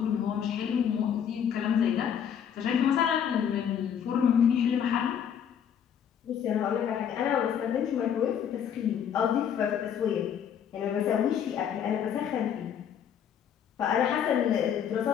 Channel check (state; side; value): quieter; right; 8.5 dB